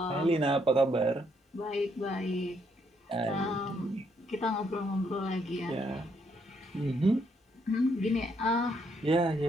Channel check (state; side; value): normal; both; correlation 0.73